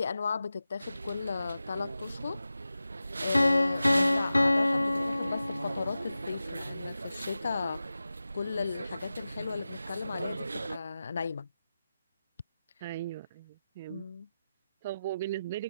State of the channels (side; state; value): both; inverted; correlation -0.94